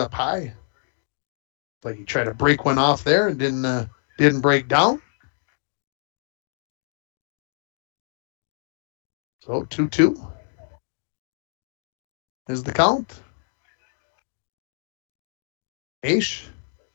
high. Like he tried to break one off there and didn't break down. So 2-2 is the count. Maish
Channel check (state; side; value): silent; right; digital silence